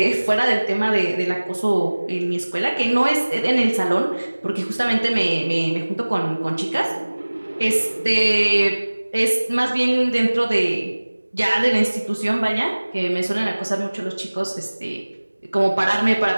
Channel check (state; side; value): inverted; both; correlation -1.00